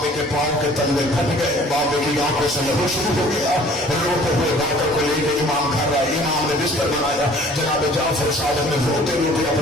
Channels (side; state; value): both; normal; correlation 0.52